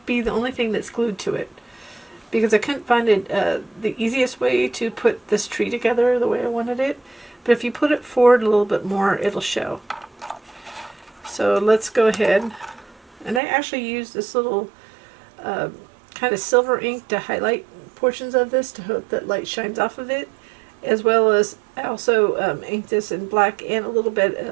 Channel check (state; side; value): drops out; left; at 13.4 s